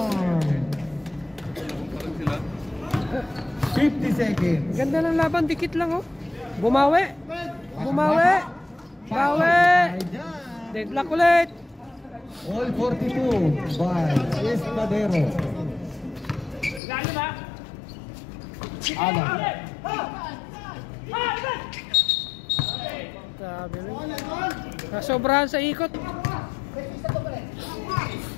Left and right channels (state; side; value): drops out; right; at 16.8 s